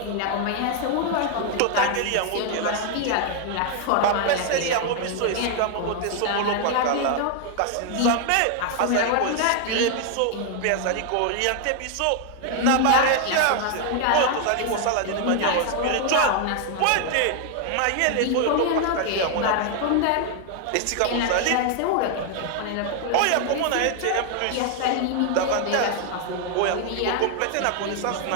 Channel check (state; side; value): different; both; correlation 0.00